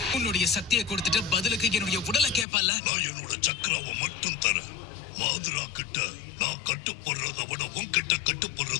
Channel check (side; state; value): right; drops out; at 2.5 s